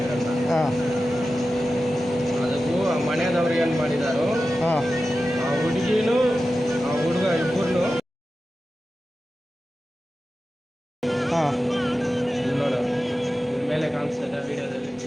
ಅದಕ್ಕೂ ಆ ಮನೆಯದವ್ರು ಏನು ಮಾಡಿದಾರೋ ಆ ಹುಡುಗಿನೂ ಆ ಹುಡುಗ ಇಬ್ಬರನ್ನು ನೋಡು, ಮೇಲೆ ಕಾಣಿಸ್ತದೆ ವಿಡಿಯೋದಲ್ಲಿ.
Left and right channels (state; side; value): normal; both; correlation 0.93